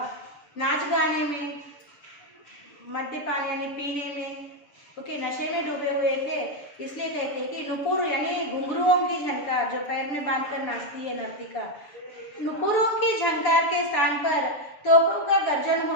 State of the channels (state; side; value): late; right; 6.9 ms